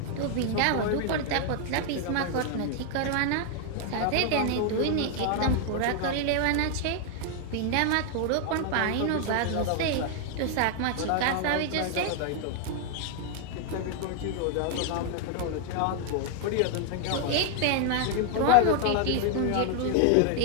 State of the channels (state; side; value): different; both; correlation 0.00